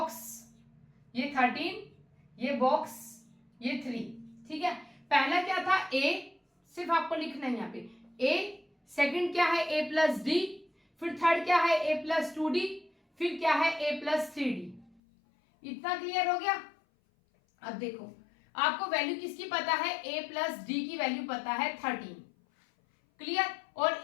ये 13, ये बॉक्स, ये 3, ठीक है। पहला क्या था a, सिर्फ आपको लिखना है यहाँ पे a, सेकंड क्या है a प्लस डी, फिर थर्ड क्या है a प्लस 2d, फिर क्या है a प्लस 3d। इतना क्लियर हो गया। अब देखो आपको वैल्यू किसकी पता है, a प्लस डी की वैल्यू पता है 13। क्लियर, और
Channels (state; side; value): drops out; right; at 15.0 s